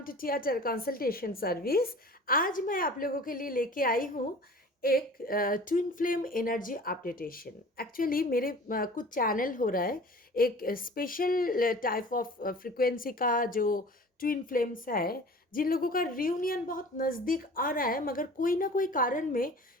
to theatre consultation service. आज मैं आप लोगों के लिए लेके आई हूँ एक twin flame energy updation. Actually मेरे कुछ चैनल हो रहा है, एक स्पेशल टाइप ऑफ फ्रिक्वेंसी का जो ट्विन फ्लेम्स है, जिन लोगों का रियूनियन बहुत नज़दीक आ रहा है, मगर कोई ना कोई कारण में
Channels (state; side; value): normal; both; correlation 0.43